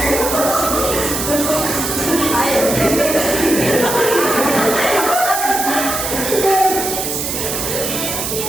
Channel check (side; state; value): right; noise; hiss, 3 dB below the sound